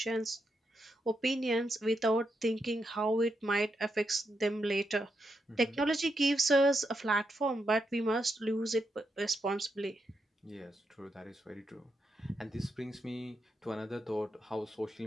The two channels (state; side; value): normal; both; correlation 0.83